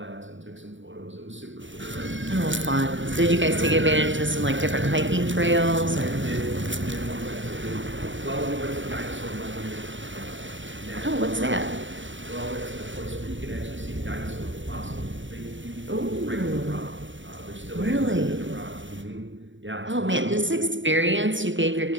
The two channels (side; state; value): left; late; 0.55 ms